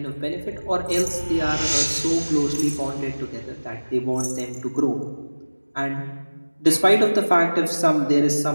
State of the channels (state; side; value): inverted; both; correlation -1.00